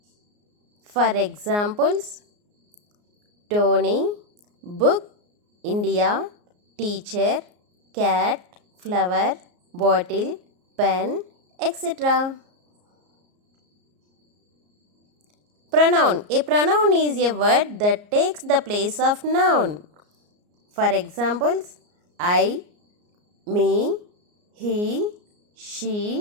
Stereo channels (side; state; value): left; late; 34 ms